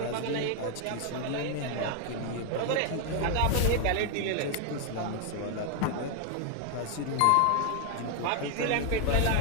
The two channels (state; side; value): different; both; correlation 0.00